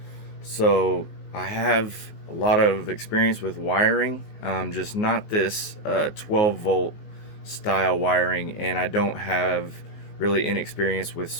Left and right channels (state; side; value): late; right; 19 ms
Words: so I have a lot of experience with wiring, just not this 12 volt style wiring, and I don't have really any experience with